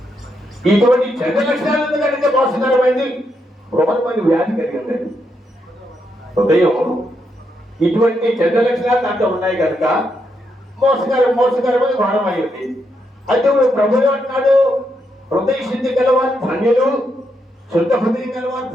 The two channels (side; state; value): both; normal; correlation 0.80